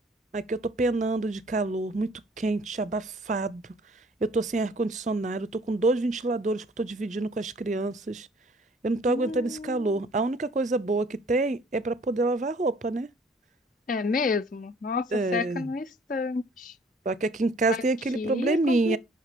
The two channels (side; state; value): both; normal; correlation 0.56